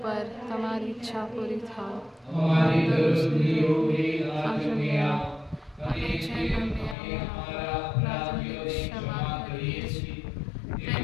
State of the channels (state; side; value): drops out; right; at 7.0 s